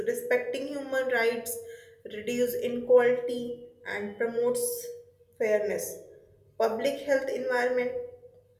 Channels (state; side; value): identical; both; correlation 1.00